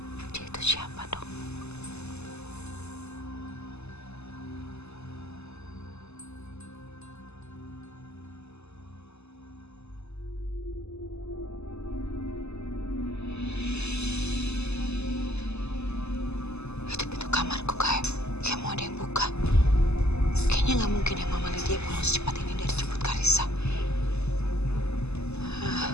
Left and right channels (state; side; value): late; right; 0.80 ms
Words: Dia itu siapa dong? Itu pintu kamarku kayak mau ada yang buka. Kayaknya nggak mungkin ya Mama Lydia pulang secepat ini dari jemput Karissa.